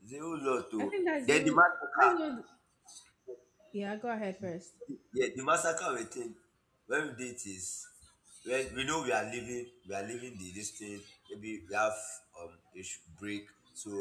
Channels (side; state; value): both; identical; correlation 1.00